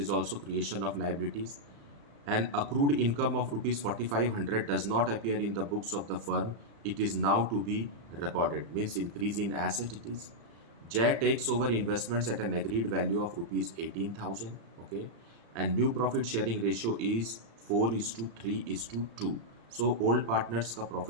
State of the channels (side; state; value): left; late; 35 ms